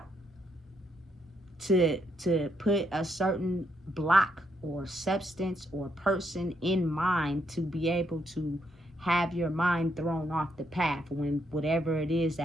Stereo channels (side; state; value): both; normal; correlation 0.76